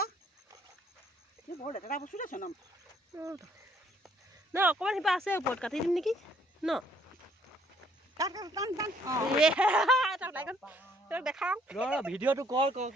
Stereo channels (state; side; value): normal; both; correlation 0.65